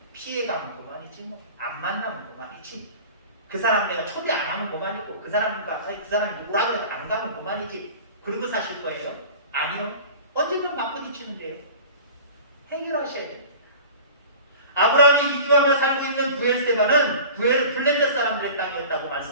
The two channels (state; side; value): inverted; both; correlation -0.40